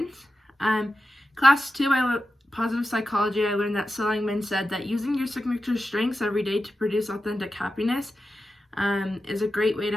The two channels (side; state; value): both; normal; correlation 0.91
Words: Class 2, positive psychology, I learned that Seligman said that using your signature strengths every day to produce authentic happiness is a great way